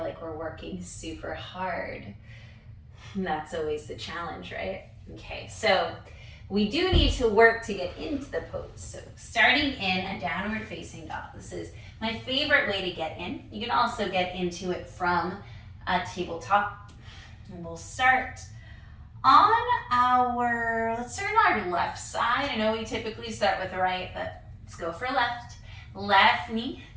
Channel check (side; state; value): both; identical; correlation 1.00